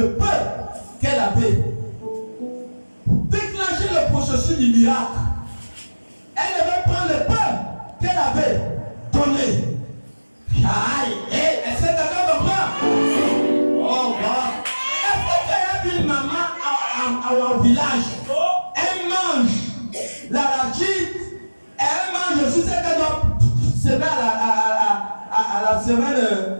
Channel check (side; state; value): both; inverted; correlation -1.00